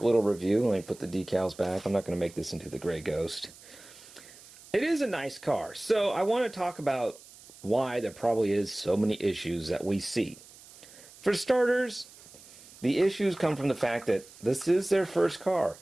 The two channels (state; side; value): noise; right; hiss, 21 dB below the sound